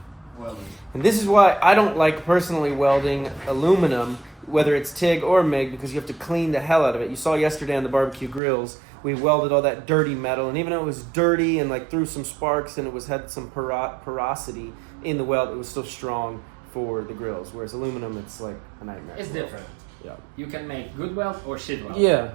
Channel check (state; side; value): drops out; left; at 8.4 s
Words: welding. And this is why I don't like personally welding aluminum, whether it's TIG or MIG, because you have to clean the hell out of it. You saw yesterday on the barbecue grills, we welded all that dirty metal, and even though it was dirty and like threw some sparks and it had some porosity in the weld, it was still strong for the grills. Whereas aluminum, it's like a nightmare. It's different. Yeah. You can make good weld or shit weld.